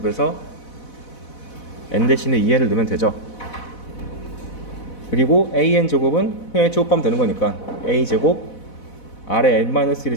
n 대신에 2n을 넣으면 되죠. 그리고 an 제곱은 그냥 제곱하면 되는 거니까 a 제곱 아래 n-1의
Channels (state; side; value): late; right; 4.1 ms